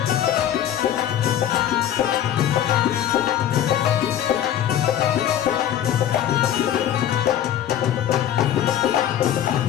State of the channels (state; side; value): quieter; right; 10.8 dB